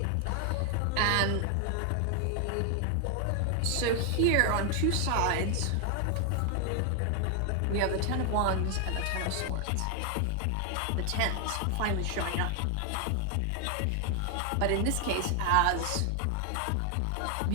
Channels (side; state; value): both; different; correlation 0.00